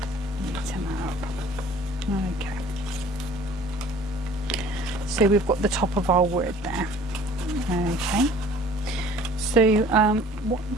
Okay, so we've got the top of our word there. Okay, so what I'm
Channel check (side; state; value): both; normal; correlation 0.50